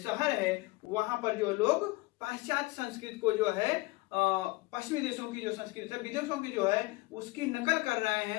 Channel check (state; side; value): quieter; right; 22.6 dB